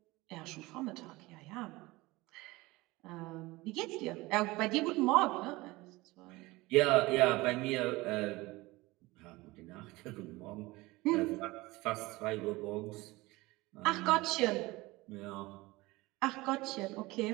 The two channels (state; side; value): quieter; left; 21.1 dB